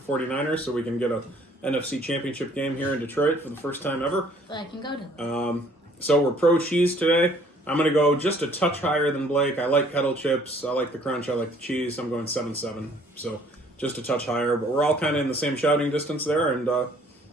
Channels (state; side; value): normal; both; correlation 0.59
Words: so we can get a NFC championship game here in Detroit for the first time ever. So I can go to. So we're pro cheese today. I'm going to go just a touch higher than Blake. I like kettle chips. I like the crunch. I like the cheese. I'm going 7.7. So just a touch higher. But we're all kind of in the same shouting distance there. And